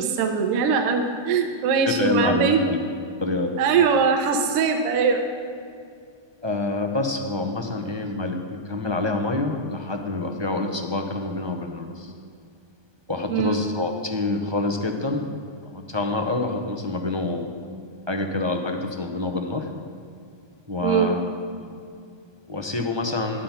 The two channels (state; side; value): late; left; 1.2 ms